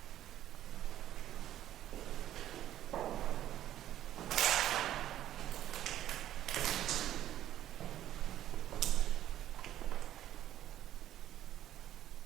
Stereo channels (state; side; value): quieter; left; 12.3 dB